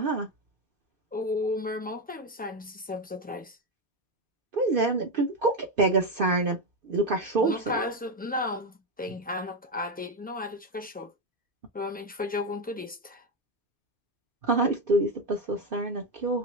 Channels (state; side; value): normal; both; correlation 0.10